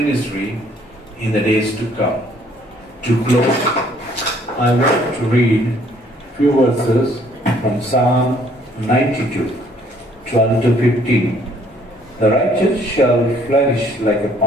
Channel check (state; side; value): normal; both; correlation 0.62